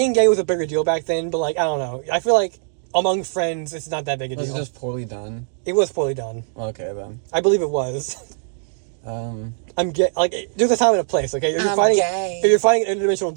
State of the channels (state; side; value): silent; left; digital silence